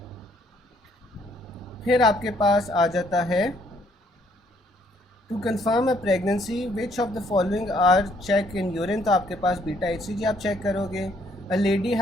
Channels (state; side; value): normal; both; correlation 0.67